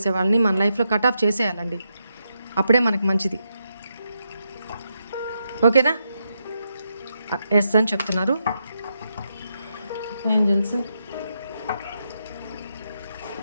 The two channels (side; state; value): both; inverted; correlation -0.83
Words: వాళ్ళని మన లైఫ్లో కట్ ఆఫ్ చేసేయాలండి. అప్పుడే మనకి మంచిది. ఓకేనా? ఎస్ అని చెప్తున్నారు angels.